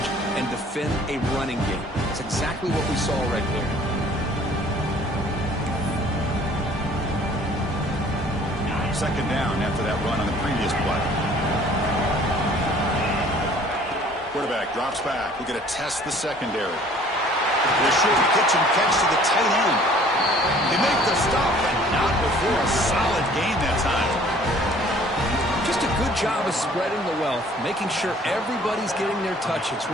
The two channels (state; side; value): normal; both; correlation 0.54